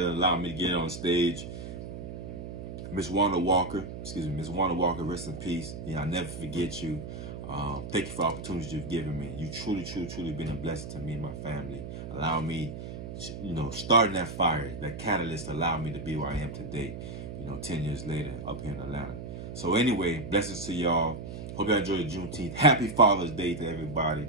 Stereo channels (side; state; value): right; noise; hum, 9 dB below the sound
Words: allowing me to get on stage. Miss Wanda Walker, Miss Wanda Walker, rest in peace. Yeah, I'll never forget you. Thank you for the opportunities you've given me. You truly been a blessing to me and my family. Allow me, you know, starting that fire, that catalyst allowed me to be where I am today, you know, 10 years later up here in Atlanta. So anyway, blessings to y'all. Hope y'all enjoy the Juneteenth. Happy Father's Day to